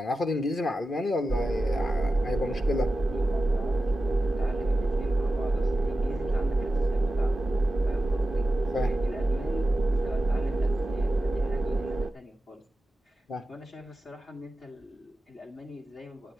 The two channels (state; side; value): normal; both; correlation 0.93